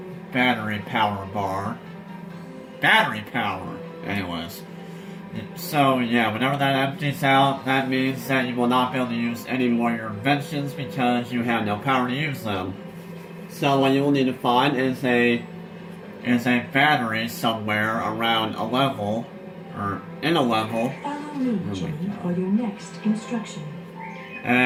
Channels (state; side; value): identical; both; correlation 1.00